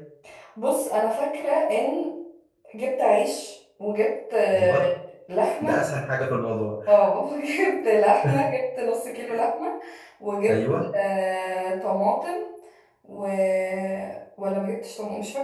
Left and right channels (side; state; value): both; identical; correlation 1.00